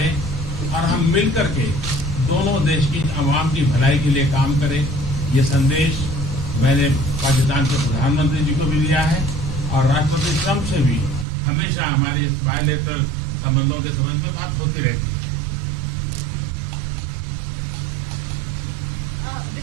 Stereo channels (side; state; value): left; drops out; at 11.2 s